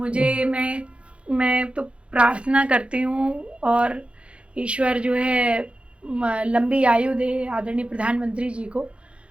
मैं तो प्रार्थना करती हूँ, और ईश्वर जो है लंबी आयु दे आदरणीय प्रधानमंत्री जी को।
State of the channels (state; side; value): late; left; 0.060 ms